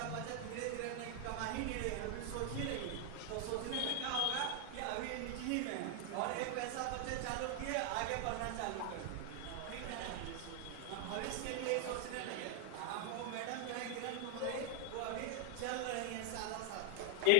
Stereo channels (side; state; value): both; different; correlation 0.00